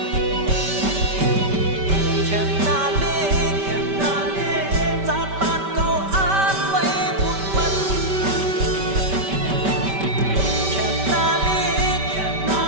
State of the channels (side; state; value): left; late; 5.2 ms